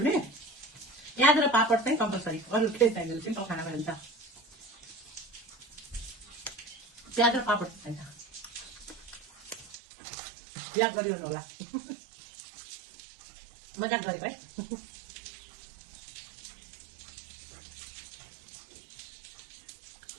भने प्याज र पापड चाहिँ कम्पलसरी, अरू केही चाहिँदैन, सिम्पल खाना भइन्छ। प्याज र पापड चाहिन्छ, याद गरिरहनु होला। मजाक गरेको है।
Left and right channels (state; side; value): drops out; left; at 9.8 s